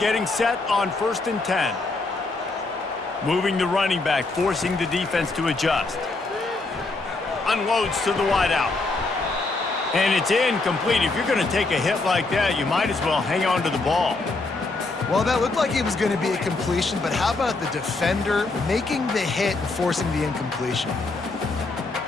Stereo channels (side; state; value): right; quieter; 3.4 dB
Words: set on 1st and 10. Moving the running back, forcing the defense to adjust. Unloads to the wideout. And it's incomplete. If you're going to take a hit like that, you might as well hang on to the ball. Well, that looked like it was going to be a completion, but how about the defender making the hit and forcing the incompletion?